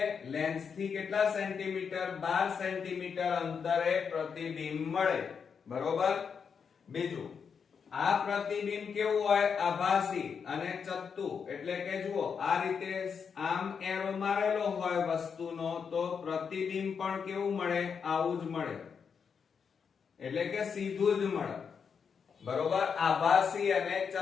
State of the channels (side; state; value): right; quieter; 6.4 dB